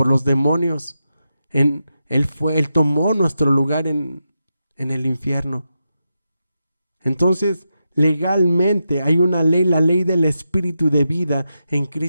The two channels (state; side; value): inverted; both; correlation -0.88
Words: los demonios. Él tomó nuestro lugar en el infierno. Entonces, legalmente hay una ley, la ley del Espíritu de vida en